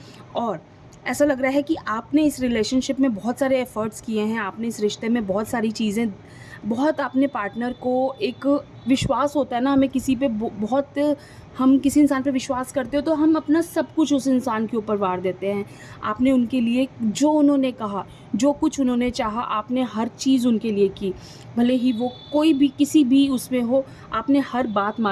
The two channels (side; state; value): both; identical; correlation 1.00